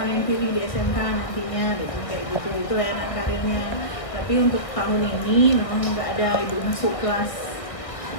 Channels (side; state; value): right; late; 1.6 ms